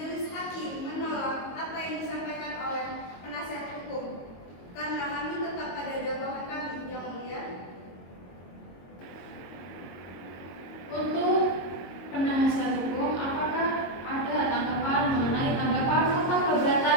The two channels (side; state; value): right; late; 22 ms